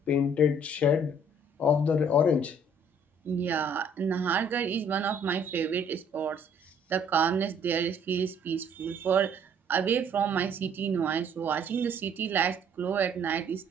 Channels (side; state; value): both; normal; correlation 0.60